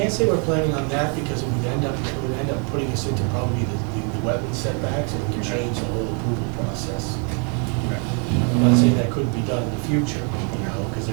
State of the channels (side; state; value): left; quieter; 37.9 dB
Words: say we're planning on that because it would end up putting us into probably the wetland setbacks, and it could change the whole approval process. I'm not saying that couldn't be done in the future, because